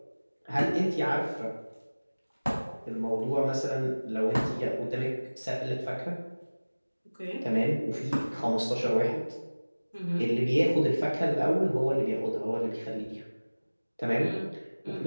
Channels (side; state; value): both; inverted; correlation -1.00